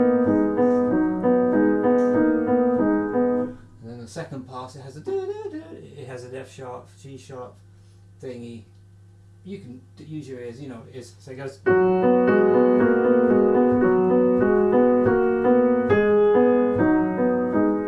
Second pass, it has a it has an F sharp, G sharp thingy. You can use your ears, you know what it is. So it goes.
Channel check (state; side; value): identical; both; correlation 1.00